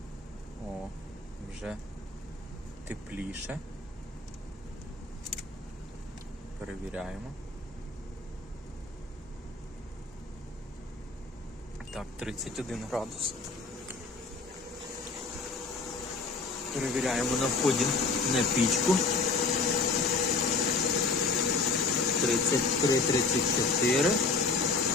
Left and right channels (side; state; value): right; quieter; 3.8 dB